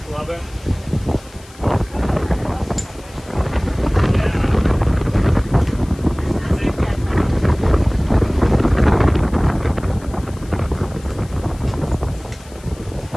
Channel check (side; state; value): left; noise; hiss, 24 dB below the sound